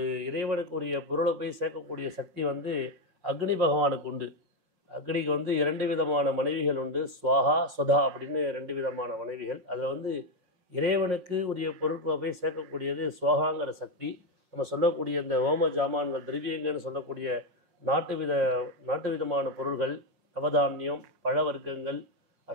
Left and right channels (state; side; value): late; left; 5.6 ms